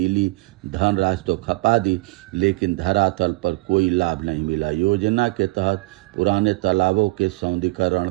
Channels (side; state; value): left; quieter; 22.8 dB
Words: धनराशि तो खपा दी, लेकिन धरातल पर कोई लाभ नहीं मिला। योजना के तहत पुराने तालाबों के सौंदर्यीकरण,